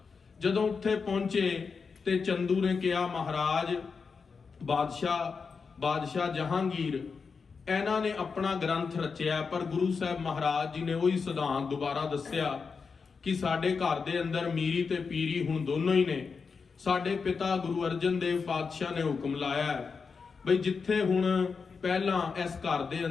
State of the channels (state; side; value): quieter; right; 5.2 dB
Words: ਜਦੋਂ ਉੱਥੇ ਪਹੁੰਚੇ ਤੇ ਚੰਦੂ ਨੇ ਕਿਹਾ, ਮਹਾਰਾਜ ਬਾਦਸ਼ਾਹ ਜਹਾਂਗੀਰ ਇਹਨਾਂ ਨੇ ਆਪਣਾ ਗ੍ਰੰਥ ਰਚਿਆ, ਪਰ ਗੁਰੂ ਸਾਹਿਬ ਮਹਾਰਾਜ ਜੀ ਨੇ ਉਹੀ ਸਿਧਾਂਤ ਦੁਬਾਰਾ ਦੱਸਿਆ ਕਿ ਸਾਡੇ ਘਰ ਦੇ ਅੰਦਰ ਮੀਰੀ ਤੇ ਪੀਰੀ ਹੁਣ ਦੋਨੋਂ ਹੀ ਨੇ। ਸਾਡੇ ਪਿਤਾ ਗੁਰੂ ਅਰਜਨ ਦੇਵ ਪਾਤਸ਼ਾਹ ਨੇ ਹੁਕਮ ਲਾਇਆ ਬਈ ਜਿੱਥੇ ਹੁਣ ਪਹਿਲਾਂ ਇਸ ਘਰ ਦੇ